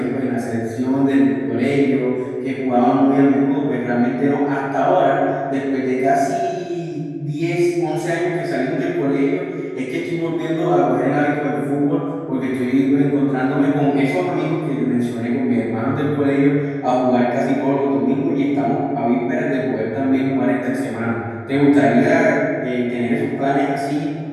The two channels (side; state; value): both; identical; correlation 1.00